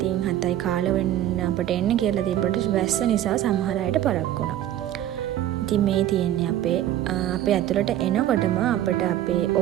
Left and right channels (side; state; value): left; quieter; 12.5 dB